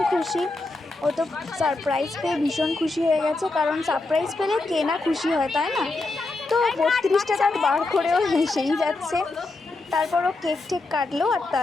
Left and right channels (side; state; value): right; quieter; 3.2 dB